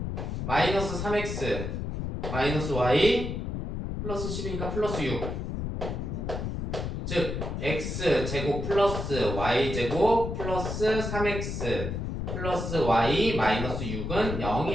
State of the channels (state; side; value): noise; left; rumble, 4 dB below the sound